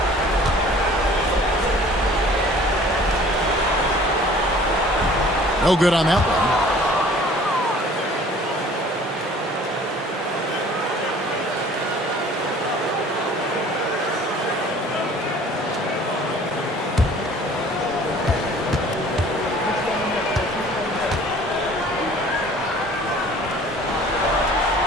No good on that one.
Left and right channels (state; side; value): normal; both; correlation 0.50